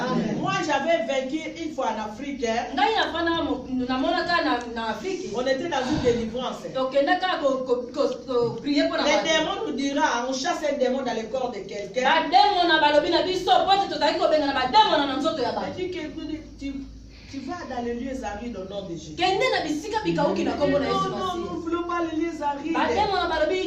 Moi j'avais vaincu une fois en Afrique. On était dans une délivrance. Les démons nous dira, on chasse un démon dans le corps de quelqu'un. Tu vas dans les lieux arides au nom de Jésus. Non, nous ne voulons pas les lieux arides.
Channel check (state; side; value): identical; both; correlation 1.00